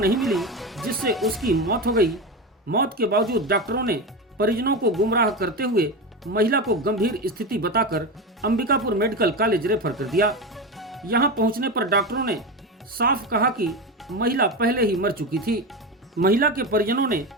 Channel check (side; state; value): both; normal; correlation 0.20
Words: मिली, जिससे उसकी मौत हो गई। मौत के बावजूद डॉक्टरों ने परिजनों को गुमराह करते हुए महिला को गंभीर स्थिति बताकर अंबिकापुर मेडिकल कॉलेज रेफर कर दिया। यहां पहुंचने पर डॉक्टरों ने साफ कहा कि महिला पहले ही मर चुकी थी। महिला के परिजनों ने